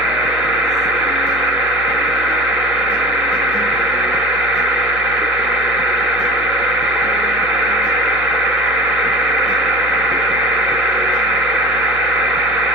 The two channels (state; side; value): noise; left; hum, 16 dB below the sound